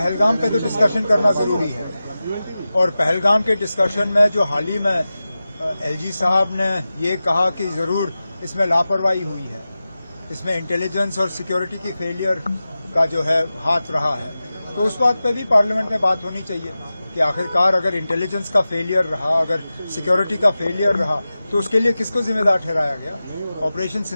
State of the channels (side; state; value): both; inverted; correlation -0.94